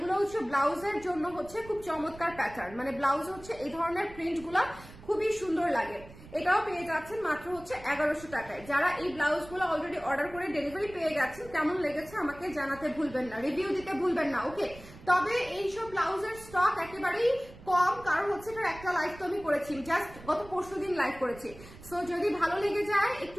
হচ্ছে ব্লাউজের জন্য হচ্ছে খুব চমৎকার প্যাটার্ন, মানে ব্লাউজ হচ্ছে এই ধরনের প্রিন্ট গুলা খুবই সুন্দর লাগে। এটাও পেয়ে যাচ্ছেন মাত্র হচ্ছে 1100 টাকায়। যারা এই ব্লাউজ গুলো অলরেডি অর্ডার করে ডেলিভারি পেয়ে গেছেন, কেমন লেগেছে আমাকে জানাতে ভুলবেন না, রিভিউ দিতে ভুলবেন না। ওকে, তবে এইসব ব্লাউজের স্টক একেবারেই কম, কারণ হচ্ছে এটার একটা লাইভ তো আমি করেছি, জাস্ট গত পরশুদিন লাইভ করেছি। সো যদি ভালো লেগে যায়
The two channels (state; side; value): noise; right; rumble, 18 dB below the sound